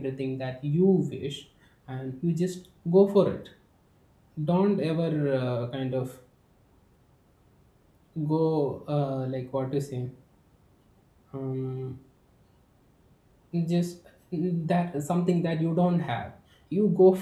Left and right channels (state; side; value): identical; both; correlation 1.00